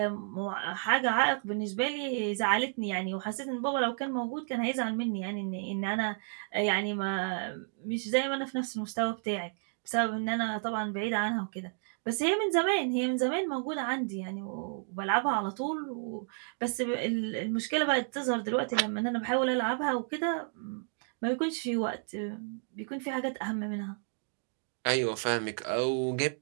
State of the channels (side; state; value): left; silent; 57 dB below the other